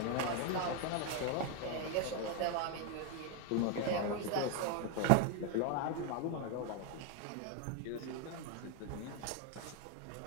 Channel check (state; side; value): different; both; correlation 0.01